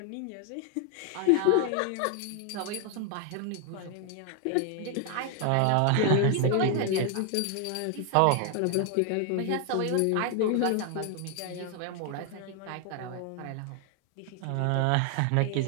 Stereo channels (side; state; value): both; different; correlation 0.00